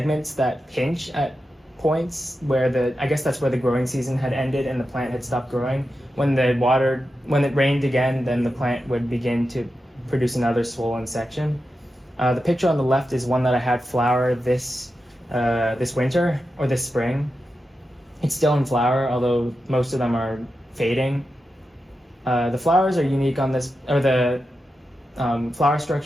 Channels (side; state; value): both; normal; correlation 0.90